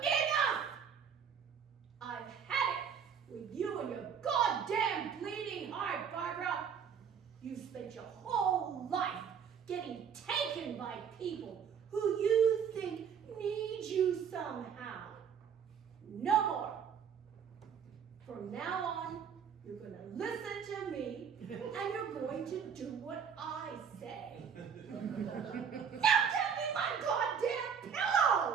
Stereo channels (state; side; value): quieter; left; 7.3 dB